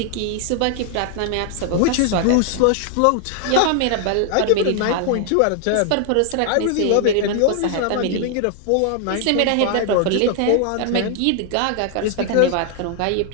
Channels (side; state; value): both; different; correlation 0.00